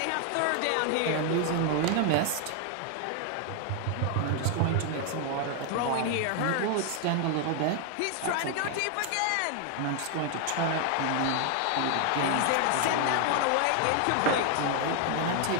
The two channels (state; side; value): different; both; correlation 0.00